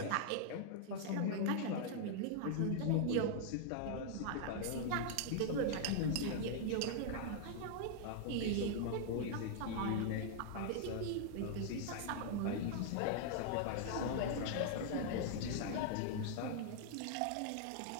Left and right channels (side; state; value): both; different; correlation -0.01